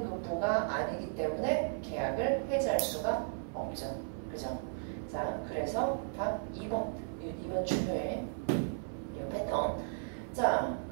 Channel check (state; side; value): silent; left; 54 dB below the other